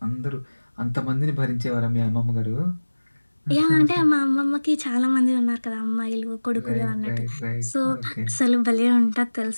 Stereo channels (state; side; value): inverted; both; correlation -1.00